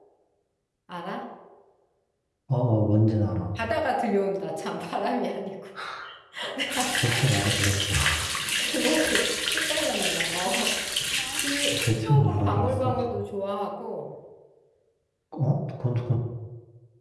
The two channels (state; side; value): identical; both; correlation 1.00